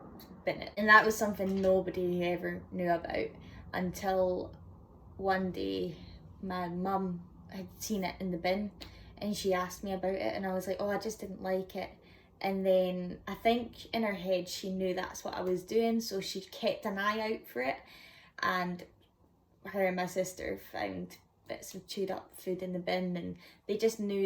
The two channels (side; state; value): both; identical; correlation 1.00